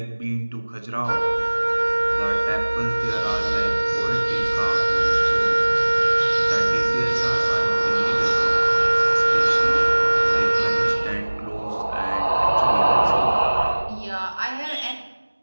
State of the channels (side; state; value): both; inverted; correlation -1.00